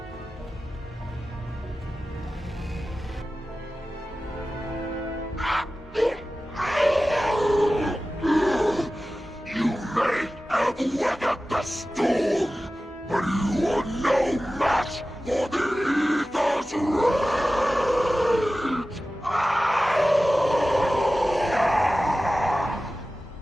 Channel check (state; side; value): normal; both; correlation 0.95